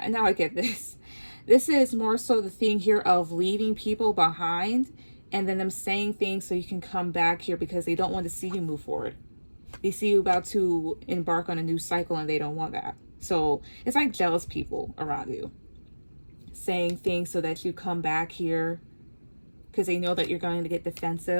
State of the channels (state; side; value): inverted; both; correlation -1.00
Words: now I get this. This is more so the thing here of leaving people behind and then them saying things so you can come back here because they don't want to see you move forward. They see you about to embark on a new cycle and they don't want that. So it's like jealous people around you saying things so that you come back here because they know that you're going to get